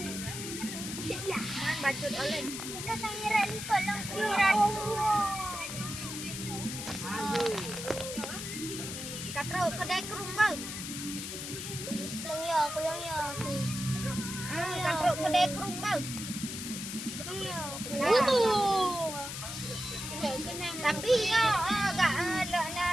Man bacut oleh. Kita sangiran kolong kiran. Katro kedai kerung bau. Kulang ya. Katro kedai kerung bau. Tapi agak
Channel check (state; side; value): noise; left; hiss, 7 dB below the sound